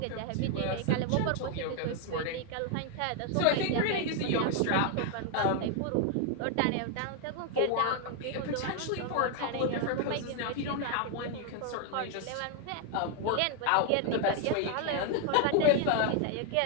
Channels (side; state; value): both; different; correlation 0.00